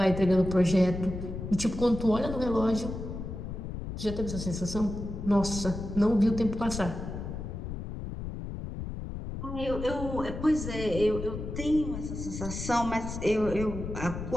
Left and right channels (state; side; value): noise; left; rumble, 7 dB below the sound